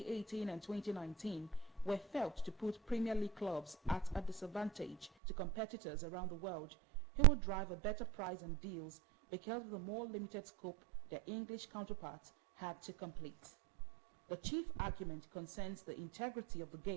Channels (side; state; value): left; drops out; at 5.1 s